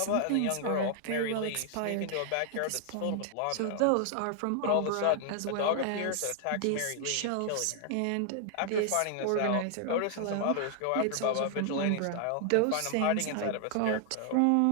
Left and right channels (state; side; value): different; both; correlation 0.00